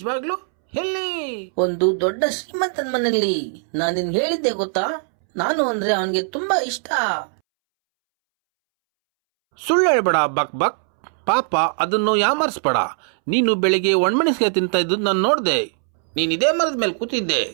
ಎಲ್ಲಿ? ಒಂದು ದೊಡ್ಡ ಶ್ರೀಮಂತನ ಮನೆಯಲ್ಲಿ. ನಾನು ನಿನ್ಗೆ ಹೇಳಿದ್ದೆ ಗೊತ್ತಾ, ನಾನು ಅಂದ್ರೆ ಅವನಿಗೆ ತುಂಬಾ ಇಷ್ಟ. ಸುಳ್ಳು ಹೇಳ್ಬೇಡ ಬಕ್ ಬಕ್. ಪಾಪ, ಅದನ್ನು ಯಾಮರ್ಸ್ಬೇಡ. ನೀನು ಬೆಳಿಗ್ಗೆ ಒಣಮೆಣಸಿಗೆ ತಿಂತ ಇದ್ದು ನಾನು ನೋಡ್ದೆ. ನೀನ್ ಇದೇ ಮರದ ಮೇಲೆ ಕೂತಿದ್ದೆ.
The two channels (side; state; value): left; silent; 65 dB below the other